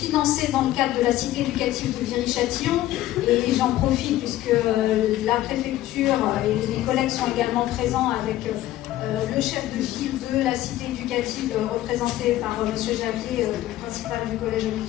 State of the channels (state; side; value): quieter; right; 14.6 dB